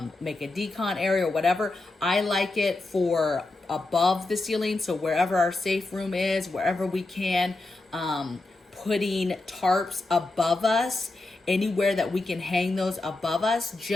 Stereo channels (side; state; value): right; quieter; 3.1 dB